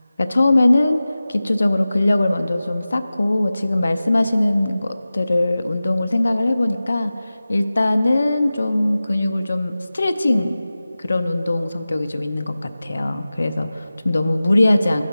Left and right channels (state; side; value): inverted; both; correlation -0.96